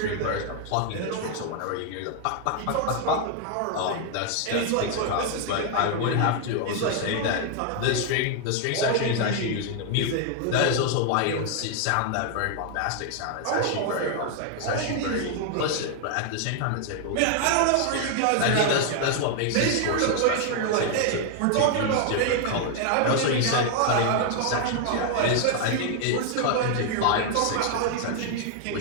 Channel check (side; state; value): both; different; correlation 0.00